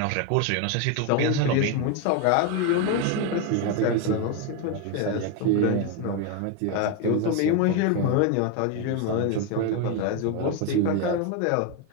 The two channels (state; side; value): different; both; correlation 0.02